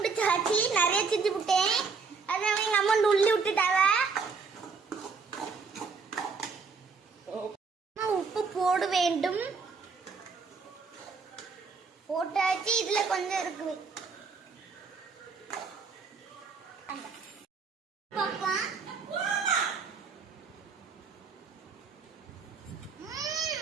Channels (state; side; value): quieter; left; 5.0 dB